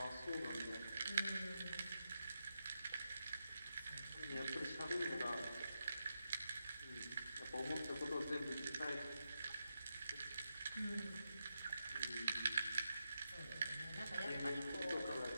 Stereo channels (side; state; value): both; inverted; correlation -0.86